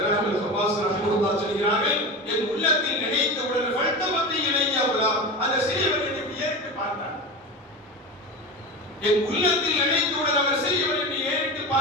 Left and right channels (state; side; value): normal; both; correlation 0.26